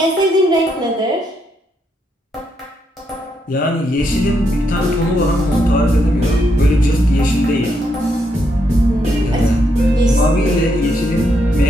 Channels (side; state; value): both; normal; correlation 0.78